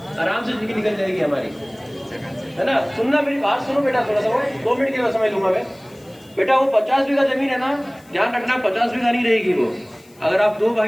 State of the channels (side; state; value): left; noise; hiss, 28 dB below the sound